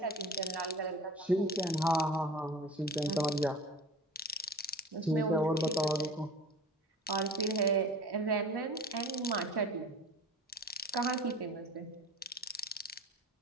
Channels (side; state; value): both; normal; correlation 0.38